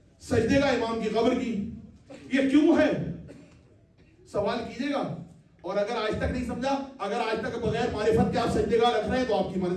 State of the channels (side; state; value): both; identical; correlation 1.00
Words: سجدے کا امام کی قبر کی. یہ کیوں ہے سوال کیجئے گا. اور اگر آج تک نہیں سمجھا, اگر آج تک بغیر معرفت کے آپ سجدے کا رکھ رہے ہیں تو آپ کی